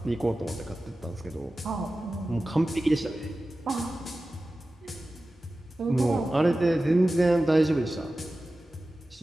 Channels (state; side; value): normal; both; correlation 0.95